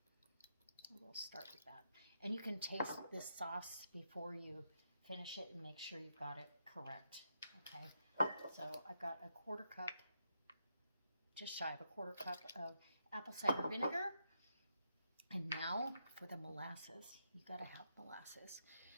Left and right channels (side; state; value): both; inverted; correlation -0.81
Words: We'll start with that. And you can taste this sauce before you finish it and make sure you've got it correct. Okay, so I've got a 1/4 cup, just shy of a 1/4 cup of apple cider vinegar. And now for the molasses. You got to have molasses.